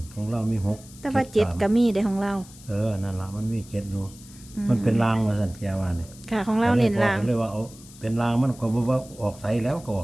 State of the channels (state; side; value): noise; left; hiss, 21 dB below the sound